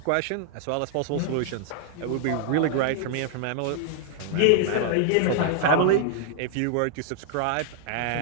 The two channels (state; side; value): different; both; correlation -0.01